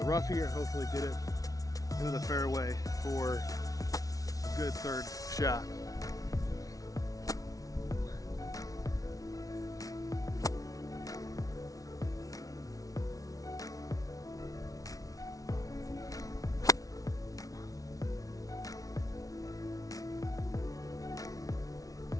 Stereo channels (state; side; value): late; right; 0.18 ms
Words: rough here and hopefully get it into the fairway for a good third shot.